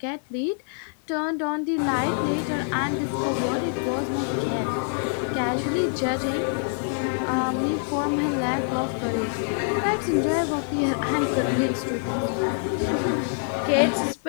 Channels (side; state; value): right; silent; digital silence